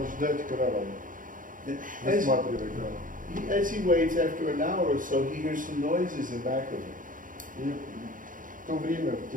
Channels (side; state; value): left; late; 0.39 ms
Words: ждать каравана, As, высматривая караван. as he waits, after an hour or so, he hears some noises in back of him. И в то время, в